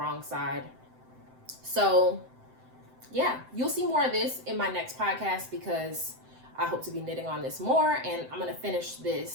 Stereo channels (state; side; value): late; left; 7.8 ms